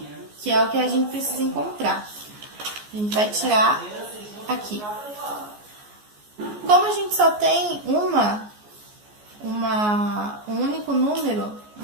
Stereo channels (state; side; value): late; left; 14 ms